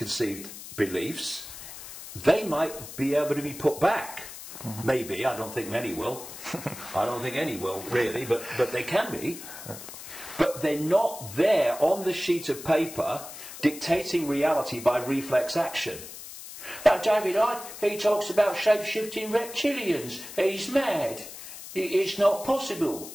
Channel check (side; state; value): left; noise; hiss, 13 dB below the sound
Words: beliefs, they might be able to be put back. Maybe, I don't think many will. I don't think any will, really, but they can be. But they're not there on the sheet of paper dictating reality by reflex action. Now, David Icke, he talks about shape-shifting reptilians. He's mad. It's not possible.